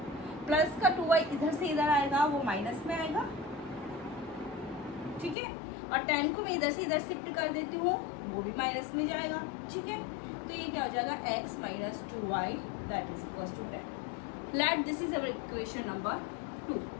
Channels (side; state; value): right; drops out; at 5.4 s